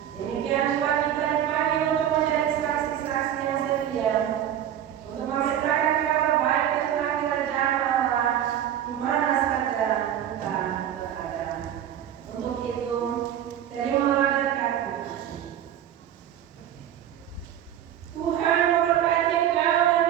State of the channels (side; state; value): left; quieter; 10.6 dB